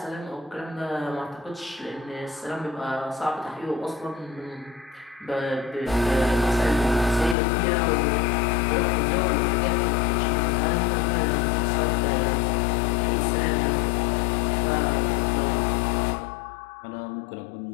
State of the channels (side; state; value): right; drops out; at 7.4 s